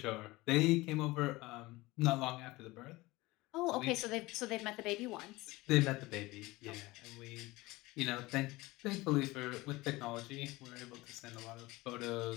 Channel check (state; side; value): quieter; right; 20.8 dB